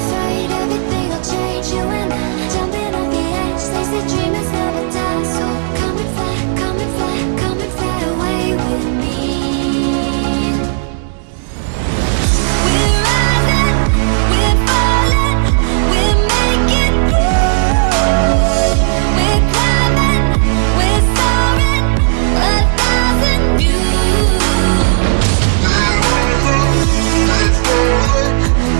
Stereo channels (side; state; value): left; silent; digital silence